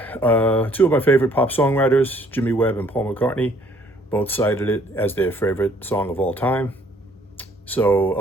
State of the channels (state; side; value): normal; both; correlation 0.61